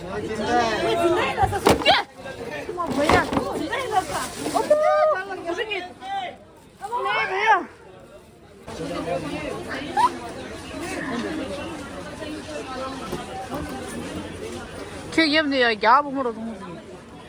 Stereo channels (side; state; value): both; identical; correlation 1.00